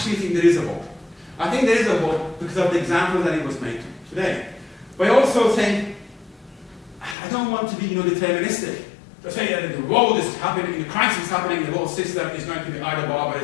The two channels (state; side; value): drops out; right; at 7.2 s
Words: think there is a hope. I think there is a hope because of the example that it was made today. But I also think, I don't want to be deterministic. To say that the world is happening, the crisis is happening, the whole system is going to be either